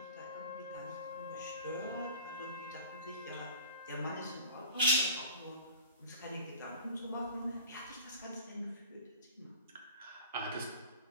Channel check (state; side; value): inverted; both; correlation -0.41